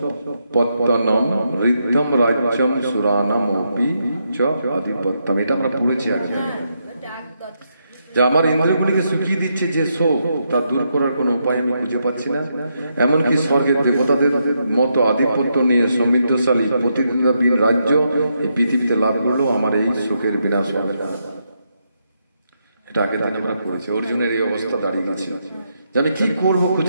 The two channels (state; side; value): inverted; both; correlation -0.80